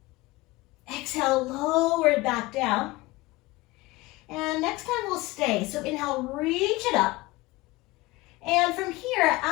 Exhale, lower it back down. And next time we'll stay. So inhale, reach it up. And from here, as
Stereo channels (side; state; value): right; quieter; 21.0 dB